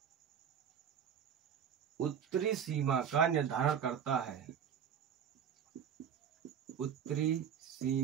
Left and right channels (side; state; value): left; quieter; 8.2 dB